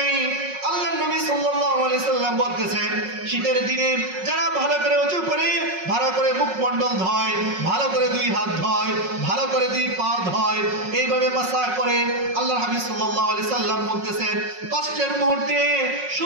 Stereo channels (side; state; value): left; late; 5.5 ms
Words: আল্লাহর নবী সাল্লাল্লাহু আলাইহি সাল্লাম বলতেছেন, শীতের দিনে যারা ভালো করে ওযু করে, ভালো করে মুখমণ্ডল ধয়, ভালো করে দুই হাত ধয়, ভালো করে দুই পা ধয়, এইভাবে মাসাহ করে, আল্লাহর হাবিব সাল্লাল্লাহু আলাইহি সাল্লাম বলতেছেন, কষ্টের মুহূর্তে